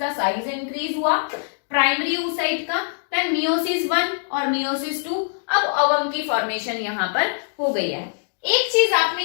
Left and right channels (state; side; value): silent; right; digital silence